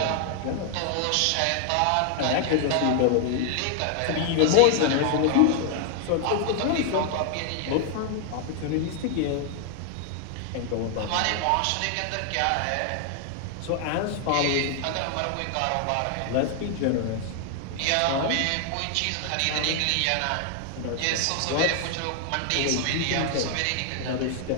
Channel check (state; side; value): different; both; correlation 0.00